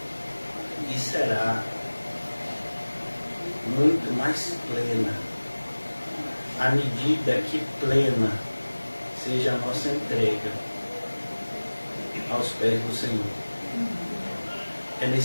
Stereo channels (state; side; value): inverted; both; correlation -1.00